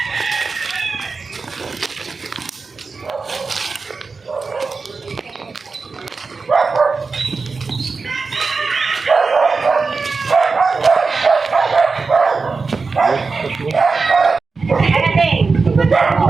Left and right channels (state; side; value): quieter; left; 4.4 dB